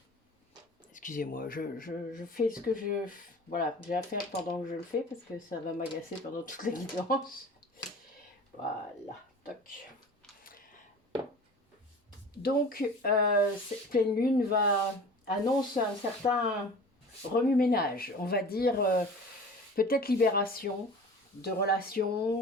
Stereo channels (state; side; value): normal; both; correlation 0.40